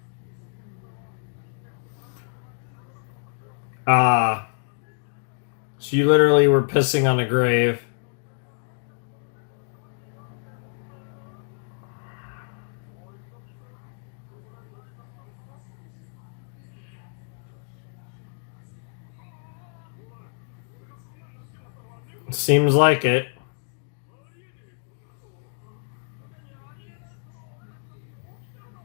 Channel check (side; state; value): right; silent; digital silence